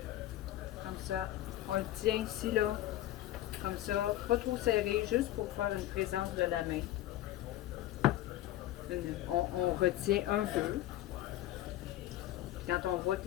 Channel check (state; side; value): quieter; right; 14.3 dB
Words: Comme ça. On le tient ici, là. Comme ça, pas trop serré, juste pour faire une présence de la main. On retient un peu. Quand on voit que